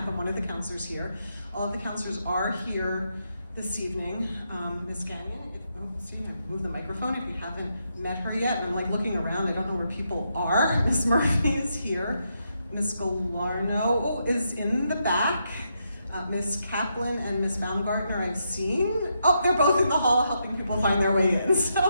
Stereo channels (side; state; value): both; inverted; correlation -0.81